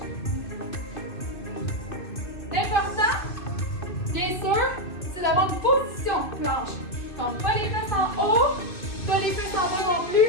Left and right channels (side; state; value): right; late; 2.6 ms